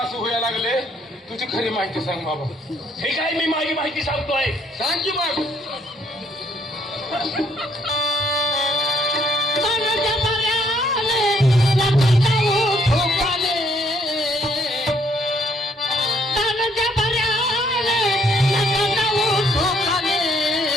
व्हायला लागले तुझी खरी माहिती सांग बाबा हे काय मी माझी माहिती सांगतोय. सांग की मग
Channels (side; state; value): both; normal; correlation 0.67